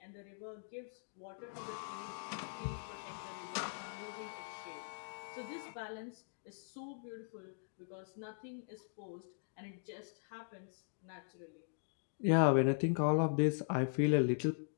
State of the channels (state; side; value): silent; right; digital silence